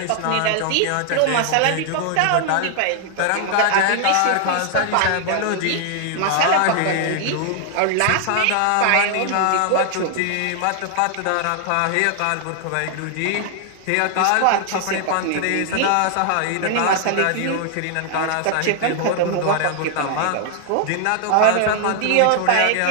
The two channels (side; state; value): both; different; correlation 0.00